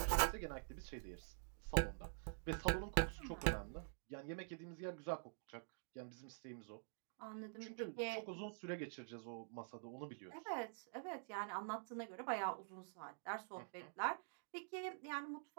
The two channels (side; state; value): left; silent; digital silence